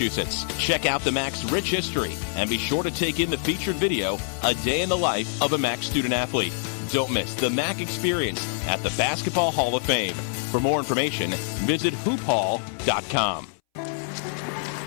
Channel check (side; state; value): right; silent; 62 dB below the other